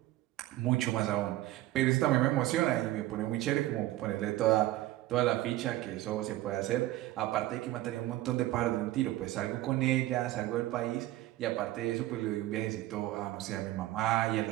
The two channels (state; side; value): quieter; left; 16.0 dB